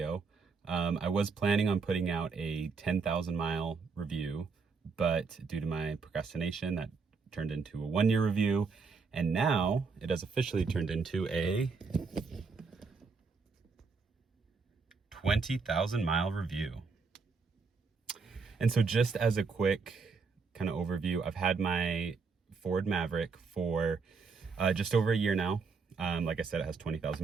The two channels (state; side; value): quieter; left; 4.9 dB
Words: I was planning on putting out a 10,000 mile review, but due to my procrastination, that turned into a 1 year review. And now it has officially turned into a 20,000 mile review. And so just as a quick kind of overview, I've had my Ford Maverick for just over a year now. Like I said, it has